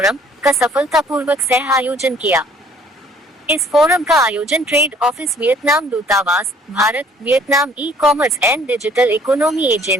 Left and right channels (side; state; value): both; normal; correlation 0.57